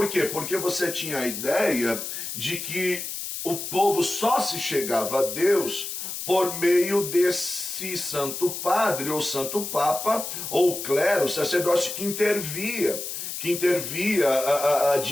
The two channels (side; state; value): left; noise; hiss, 6 dB below the sound